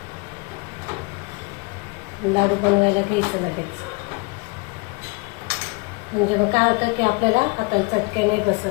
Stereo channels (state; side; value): quieter; right; 28.6 dB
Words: लाडू बनवायला घ्यायचं लगेच. म्हणजे मग काय होतं की आपल्याला हाताला चटके नाही